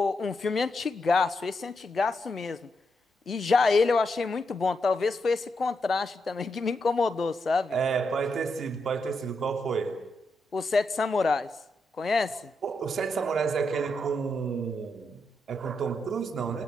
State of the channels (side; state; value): both; normal; correlation 0.83